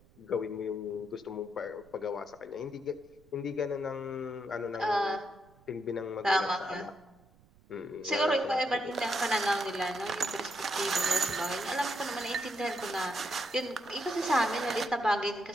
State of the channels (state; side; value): noise; right; rumble, 28 dB below the sound